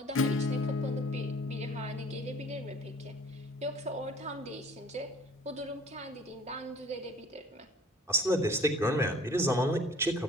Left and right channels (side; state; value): both; normal; correlation 0.50